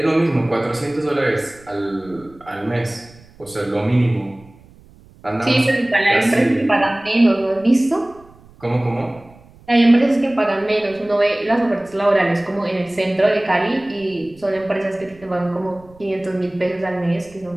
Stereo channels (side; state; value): right; noise; rumble, 25 dB below the sound